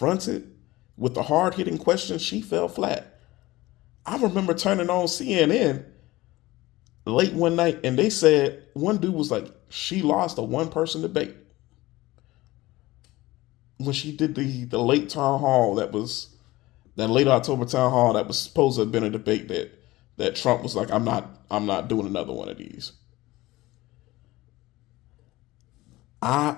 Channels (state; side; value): quieter; right; 18.8 dB